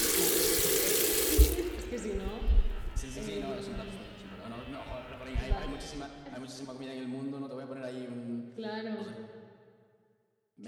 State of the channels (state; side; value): identical; both; correlation 1.00